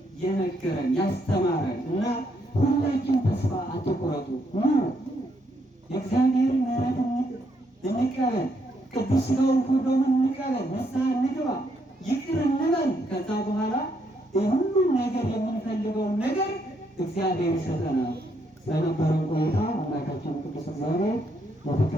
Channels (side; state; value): both; normal; correlation 0.75